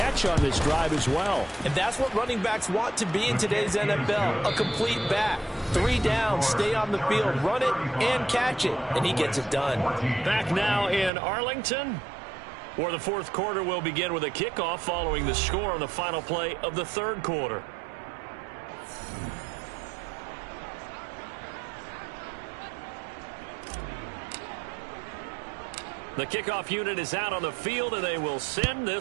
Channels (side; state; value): left; drops out; at 11.1 s